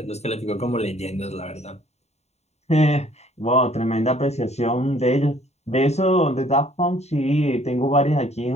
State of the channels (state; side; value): late; right; 0.32 ms